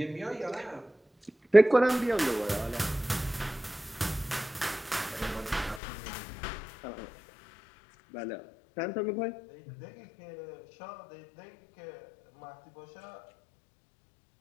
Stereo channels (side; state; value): right; drops out; at 5.8 s